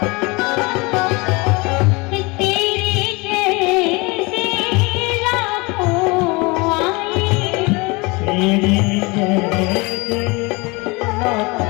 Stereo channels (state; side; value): quieter; right; 26.1 dB